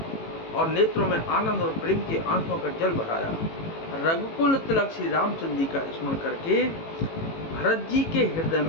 और नेत्रों में आनंद और प्रेम के आंसुओं का जल भराया। रघुकुल तिलक श्री रामचंद्र जी का स्मरण करके भरत जी के हृदय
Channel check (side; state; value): right; late; 18 ms